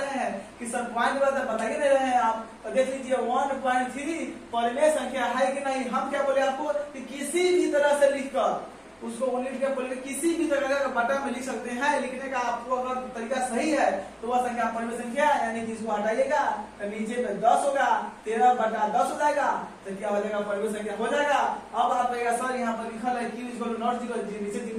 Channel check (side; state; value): both; identical; correlation 1.00